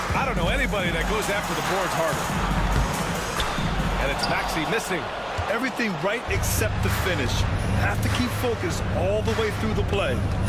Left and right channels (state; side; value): identical; both; correlation 1.00